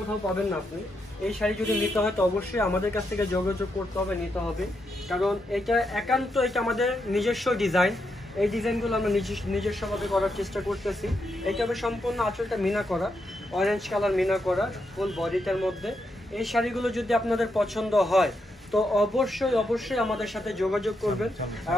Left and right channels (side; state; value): both; normal; correlation 0.82